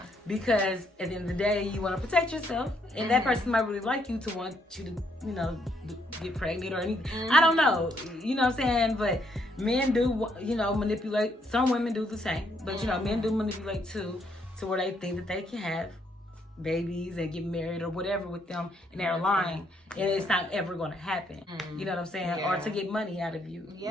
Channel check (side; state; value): both; normal; correlation 0.72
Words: because at the end of the day, you want to protect yourself, and that person might really like you to want you to, get pregnant or anything. I don't know. You know what I'm saying? But men do, manipulate. Some women do the same, but men do manipulate too, to where they think that they can have babies and get married or whatever with them, and they're lying, and it's not ever going to happen. You know what I'm saying? Or to get money out of you.